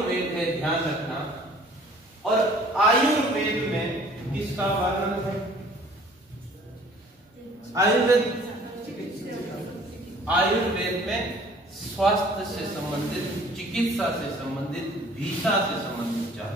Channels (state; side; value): normal; both; correlation 0.53